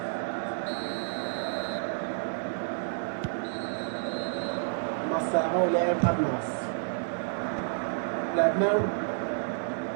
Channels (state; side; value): silent; left; digital silence